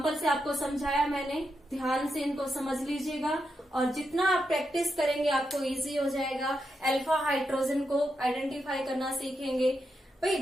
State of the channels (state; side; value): normal; both; correlation 0.85